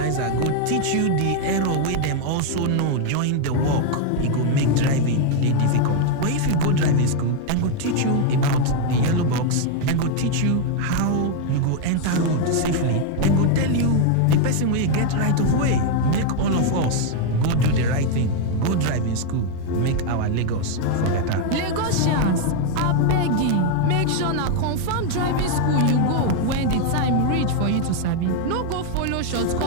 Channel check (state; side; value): different; both; correlation 0.01